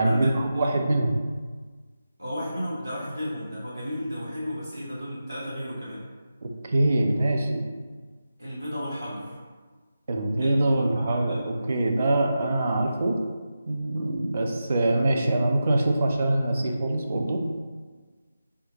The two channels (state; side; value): inverted; both; correlation -0.91